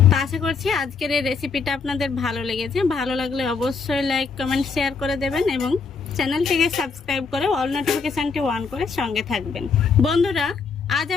তো আশা করছি আজকের এই রেসিপিটা আপনাদের ভালো লেগেছে। ভালো লাগলে অবশ্যই লাইক কমেন্ট শেয়ার করে দেবেন এবং চ্যানেলটিকে সাবস্ক্রাইব করে অল নোটিফিকেশনটি অন করে সঙ্গে থাকবেন। বন্ধুরা আজ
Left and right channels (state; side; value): quieter; right; 5.1 dB